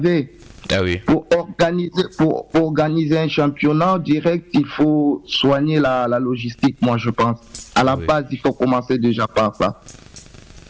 Ah oui. Pour organiser un championnat direct, il faut soigner la logistique, moi je pense. À la base, il faut commencer déjà par ça.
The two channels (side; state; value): both; identical; correlation 1.00